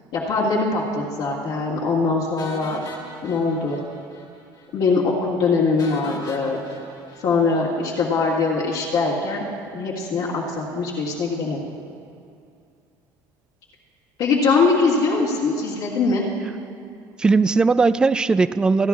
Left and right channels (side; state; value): both; normal; correlation 0.57